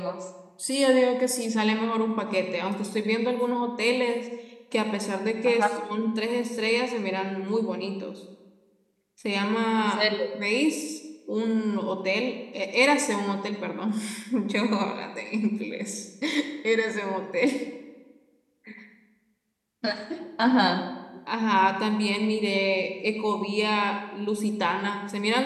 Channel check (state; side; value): identical; both; correlation 1.00